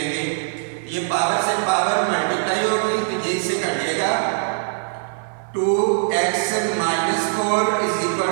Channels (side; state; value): left; silent; 55 dB below the other